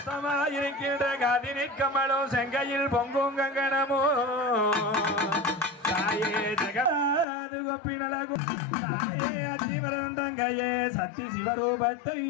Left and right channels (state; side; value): drops out; right; at 7.2 s